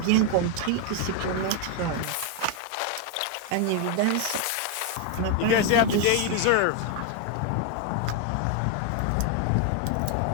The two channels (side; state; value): both; different; correlation 0.01